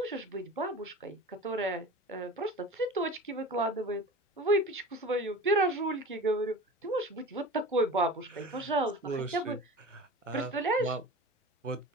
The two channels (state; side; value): normal; both; correlation 0.35